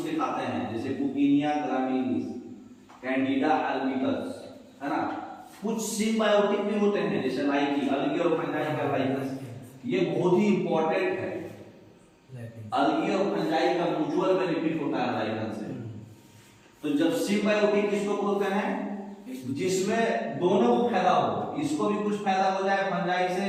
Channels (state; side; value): identical; both; correlation 1.00